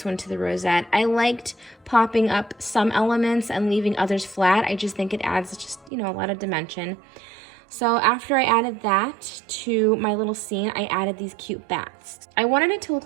one to the rosette. I liked popping up some elements and leaving others flat. I just think it adds just, a lot of dimension. So after I added that to my little scene, I added these cute bats. I wanted it to look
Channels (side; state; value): left; drops out; at 5.9 s